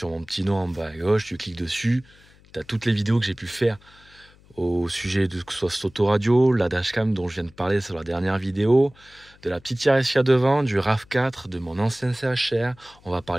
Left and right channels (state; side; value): noise; left; hum, 27 dB below the sound